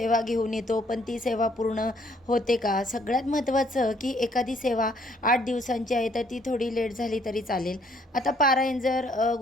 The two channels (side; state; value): both; normal; correlation 0.65